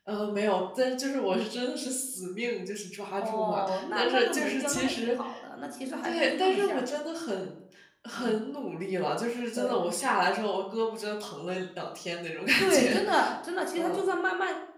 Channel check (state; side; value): identical; both; correlation 1.00